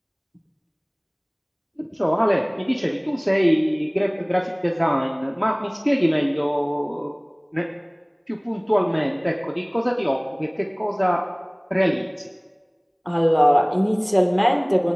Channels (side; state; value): both; identical; correlation 1.00